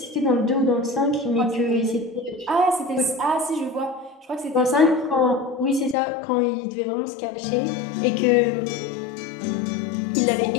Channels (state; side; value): drops out; right; at 6.0 s